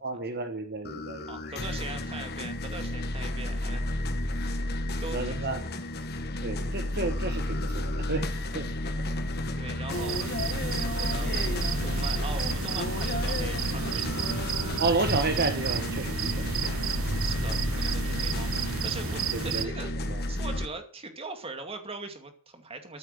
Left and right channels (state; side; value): normal; both; correlation 0.48